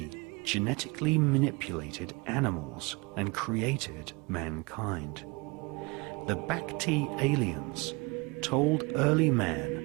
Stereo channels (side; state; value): left; quieter; 27.1 dB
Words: genetically manipulated animals and created mankind. The Bhakti aliens told early